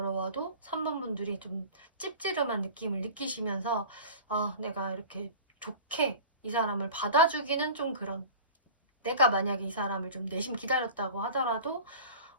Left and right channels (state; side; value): inverted; both; correlation -0.38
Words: 3번 분들이 좀 찝찝한 느낌을 느끼시면서 내가 이렇게 좋게 이 사람을 받아주기는 좀 그런, 내가 만약에 이 사람을 좀 내심 기다렸다고 하더라도